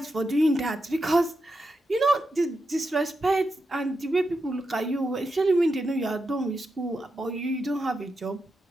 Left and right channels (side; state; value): both; normal; correlation 0.87